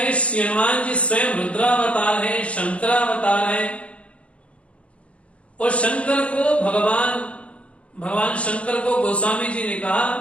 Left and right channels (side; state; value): right; late; 0.062 ms